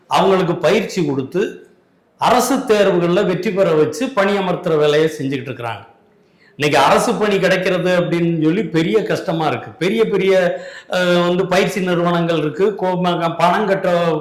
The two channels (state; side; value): identical; both; correlation 1.00